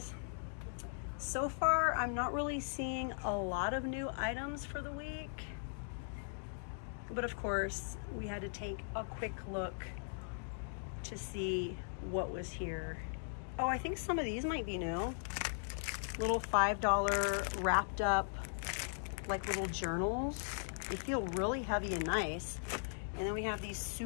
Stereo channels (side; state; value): right; silent; digital silence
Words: So far, I'm not really seeing a lot of new items for the week. But of course, we had to take a quick look to see what was here. Oh, I think some of these might be new. Little $5 wrapped up, like little journals. They feel really heavy and nice. And then we have these